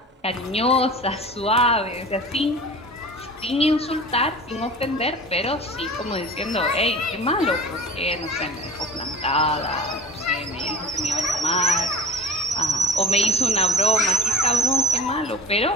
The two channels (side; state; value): both; normal; correlation 0.38